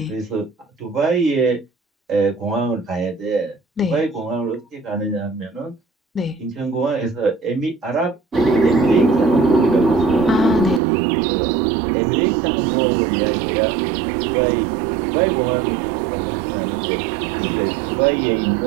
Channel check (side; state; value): left; drops out; at 10.8 s